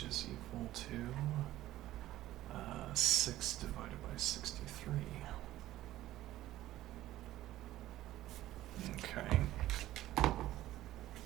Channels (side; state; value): left; quieter; 14.7 dB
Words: is equal to 6 divided by 63. Okay.